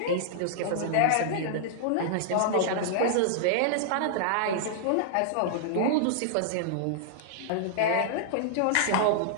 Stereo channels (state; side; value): different; both; correlation -0.01